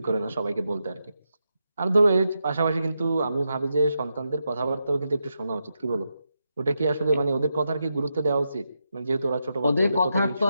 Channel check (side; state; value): both; inverted; correlation -0.86